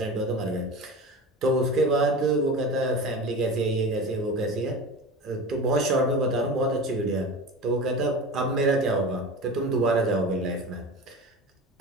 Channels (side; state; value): both; normal; correlation 0.31